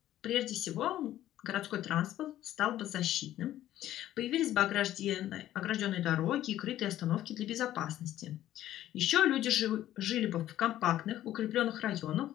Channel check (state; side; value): quieter; right; 13.1 dB